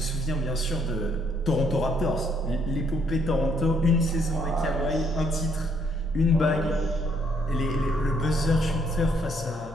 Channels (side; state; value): both; normal; correlation 0.69